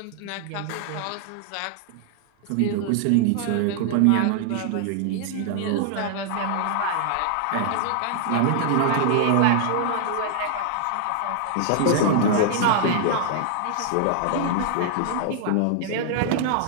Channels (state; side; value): different; both; correlation -0.01